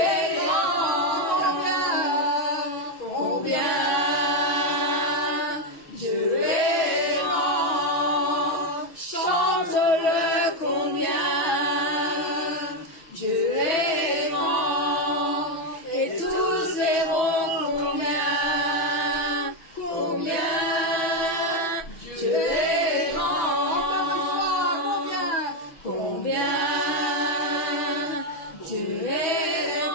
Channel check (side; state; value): right; late; 6.2 ms